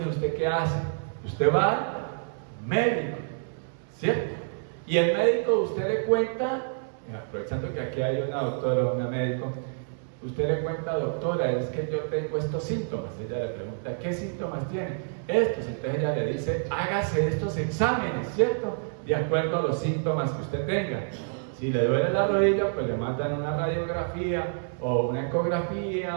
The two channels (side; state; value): left; silent; digital silence